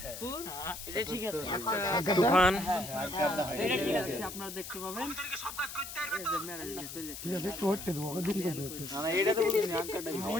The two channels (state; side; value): noise; left; hiss, 10 dB below the sound